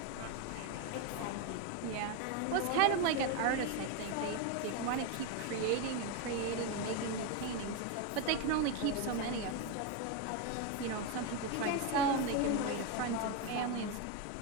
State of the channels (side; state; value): both; different; correlation 0.02